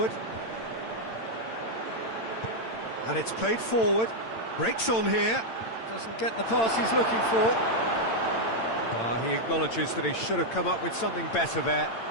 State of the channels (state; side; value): late; right; 8.9 ms